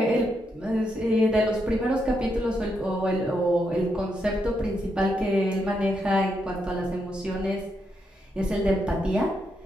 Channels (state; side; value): normal; both; correlation 0.81